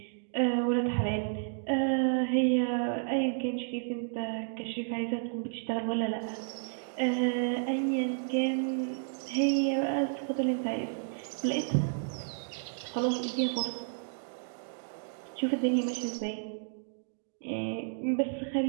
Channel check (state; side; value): silent; left; digital silence